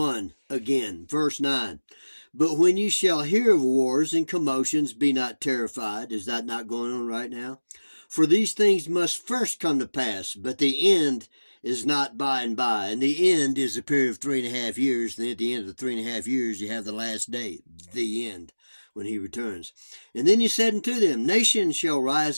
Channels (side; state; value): both; inverted; correlation -1.00